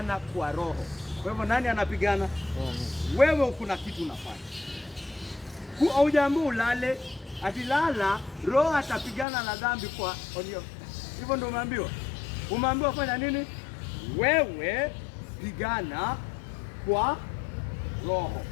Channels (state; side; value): drops out; right; at 9.2 s